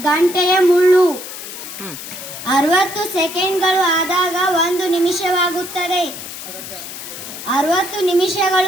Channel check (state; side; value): noise; left; hiss, 11 dB below the sound